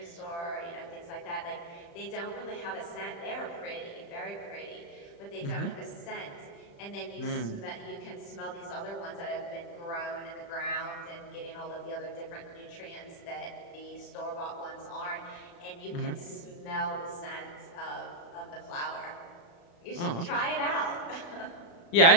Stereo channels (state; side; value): late; right; 35 ms